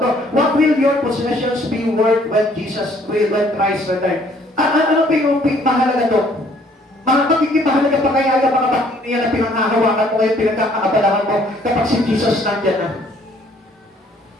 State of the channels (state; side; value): normal; both; correlation 0.61